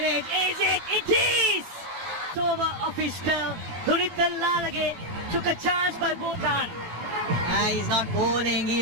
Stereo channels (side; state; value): left; late; 18 ms